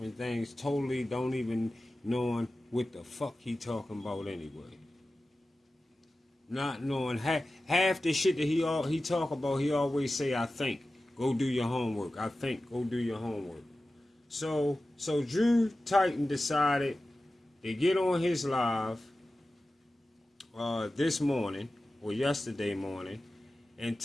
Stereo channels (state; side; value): normal; both; correlation 0.95